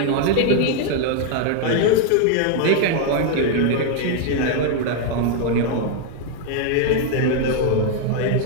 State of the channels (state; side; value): different; both; correlation 0.00